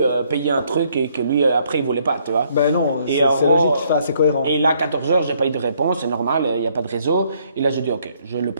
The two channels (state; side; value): inverted; both; correlation -0.68